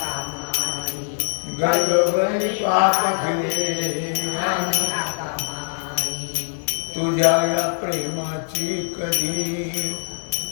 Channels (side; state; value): right; silent; digital silence